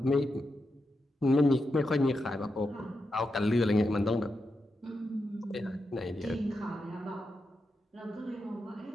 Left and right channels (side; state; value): both; normal; correlation 0.87